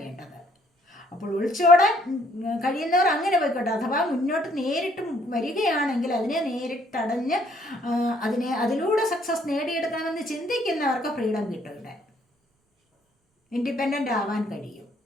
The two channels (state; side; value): normal; both; correlation 0.65